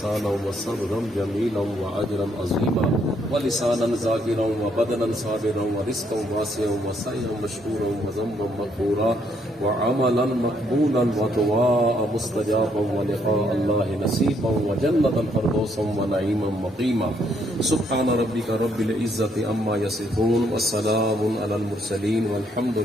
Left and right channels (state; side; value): normal; both; correlation 0.71